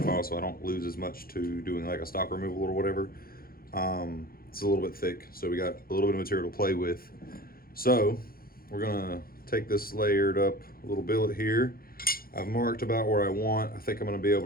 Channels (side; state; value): right; late; 0.43 ms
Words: so I don't lose as much to doing like a stock removal or whatever. It's a little bit thick, so we got a little bit of material to play with. So we're gonna take this layered up little billet here. I've marked about where I want. I think I'm gonna be